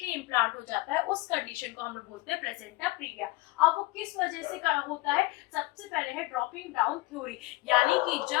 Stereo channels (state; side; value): quieter; right; 21.7 dB